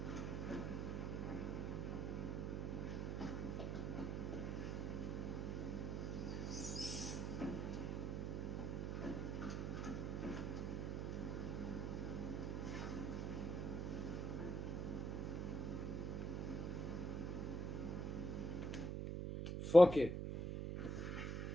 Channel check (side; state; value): right; noise; hum, 1 dB below the sound